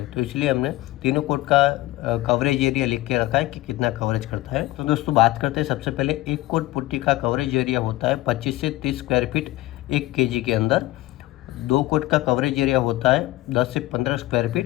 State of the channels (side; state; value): right; quieter; 17.9 dB